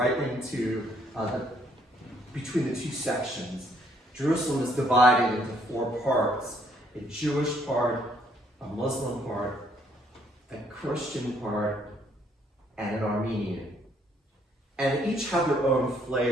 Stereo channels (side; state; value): both; normal; correlation 0.67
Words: into between the two sections. Jerusalem is divided into 4 parts: a Jewish part, a Muslim part, a Christian part, and an Armenian. And each have their own